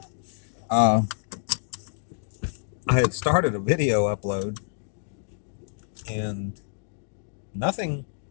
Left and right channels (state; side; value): silent; right; digital silence